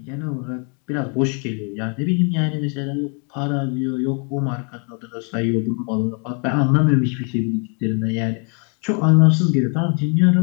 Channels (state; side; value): quieter; right; 38.2 dB